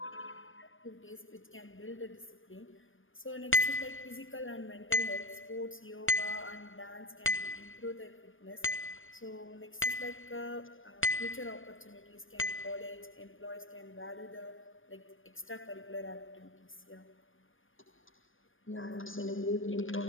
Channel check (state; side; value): late; right; 0.58 ms